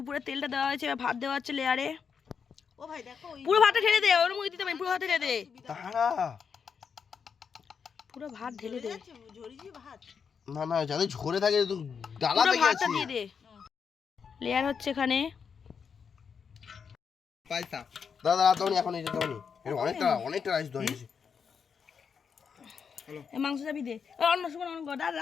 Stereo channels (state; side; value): quieter; right; 6.4 dB